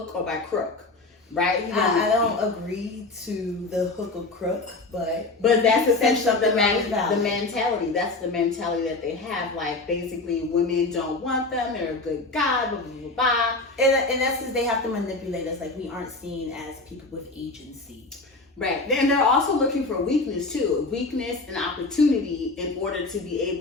or by crook, right? I don't agree to the hook or crook, but that's essentially the valid. mentality. That's the mentality that they have. Like basically, women don't want them. They're a good guy, blah blah blah blah. In essence, they have to manipulate us. Like we aren't seen as people with agency. Right. Then they're also looking for weakness too. Weakness and opportunity in order to be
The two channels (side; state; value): right; quieter; 3.3 dB